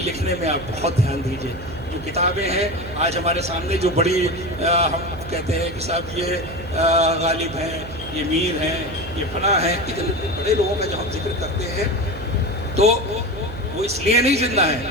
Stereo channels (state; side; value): noise; right; hum, 13 dB below the sound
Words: लिखने में आप बहुत ध्यान दीजिए। जो किताबें हैं आज हमारे सामने जो बड़ी हम कहते हैं कि साहब ये गालिब हैं, ये मीर हैं, ये फना हैं, इतने बड़े लोगों का जब हम जिक्र करते हैं तो वो इसलिए नहीं जिंदा